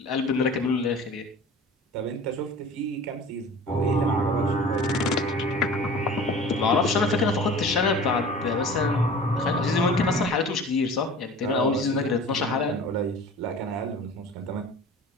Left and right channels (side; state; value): both; normal; correlation 0.41